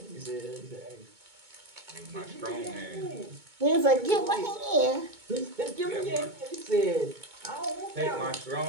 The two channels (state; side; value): late; left; 2.2 ms